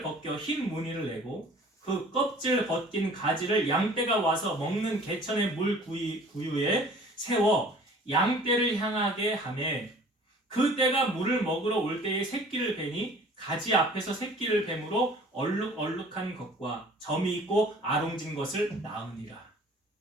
벗겨 흰 무늬를 내고 그 껍질 벗긴 가지를 양떼가 와서 먹는 개천의 물 구유에 세워 양떼를 향하게 하매 그 떼가 물을 먹으러 올 때에 새끼를 베니 가지 앞에서 새끼를 뱀으로 얼룩얼룩한 것과 점이 있고 아롱진 것을 낳으니라.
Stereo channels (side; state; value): both; normal; correlation 0.49